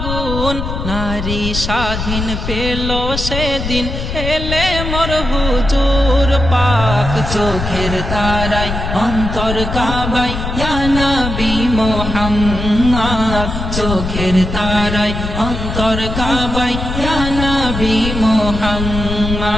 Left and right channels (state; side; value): noise; left; rumble, 5 dB below the sound